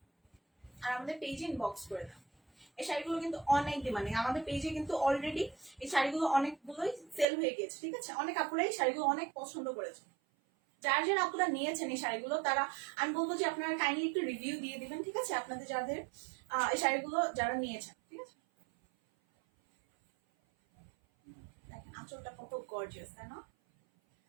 আর আমাদের পেজে ইনবক্স করে দাও। এই শাড়িগুলো কিন্তু অনেক ডিমান্ডিং, আমাদের পেজে কিন্তু অলরেডি এই শাড়িগুলো অনেকগুলোই সেল হয়ে গেছে, ঠিক আছে? অনেক আপুরা এই শাড়িগুলো অনেক পছন্দ করেছে। যার যারা আপুরা নিয়েছেন এই শাড়িগুলো তারা, আমি বলবো যে আপনারা কাইন্ডলি একটু রিভিউ দিয়ে দিবেন, ঠিক আছে? আপনাদের যাদের এই শাড়িগুলো যারা নিয়েছেন, ঠিক আছে? দেখেন আঁচলটা কত গর্জিয়াস, তাই না?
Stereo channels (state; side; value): drops out; left; at 7.2 s